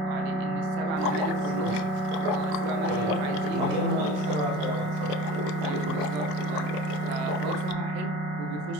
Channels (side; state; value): left; late; 27 ms